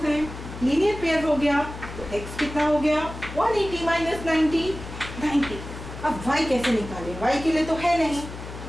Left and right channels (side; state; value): left; noise; hum, 11 dB below the sound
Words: हैं. लीनियर पेयर हो गया तो x कितना हो गया? 180 माइनस 90, 90. अब y कैसे निकालें? y के लिए तो है नहीं.